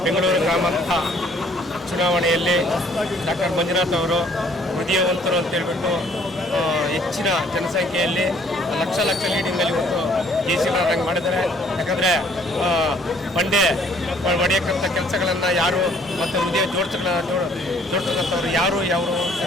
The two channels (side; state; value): both; normal; correlation 0.60